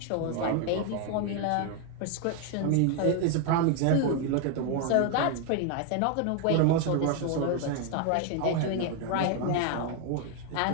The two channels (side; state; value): both; different; correlation 0.01